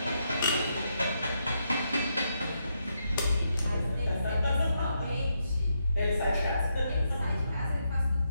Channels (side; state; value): both; inverted; correlation -0.81